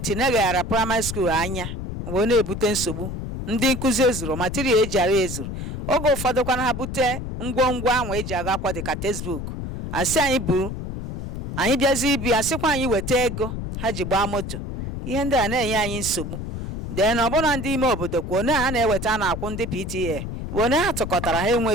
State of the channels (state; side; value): noise; left; rumble, 6 dB below the sound